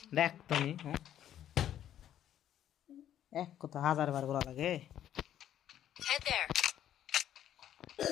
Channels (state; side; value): quieter; right; 11.0 dB